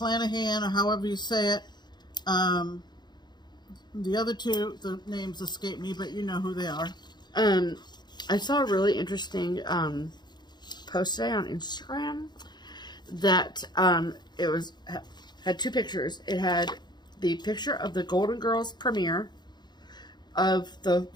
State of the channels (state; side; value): late; right; 0.21 ms